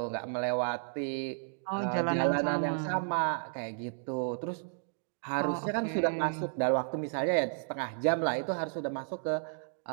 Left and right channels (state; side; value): silent; left; digital silence